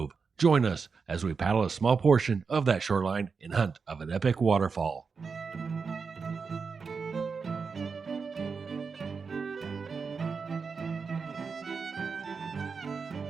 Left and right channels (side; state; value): left; quieter; 5.2 dB